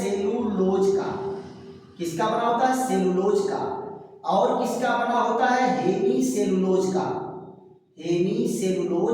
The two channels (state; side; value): identical; both; correlation 1.00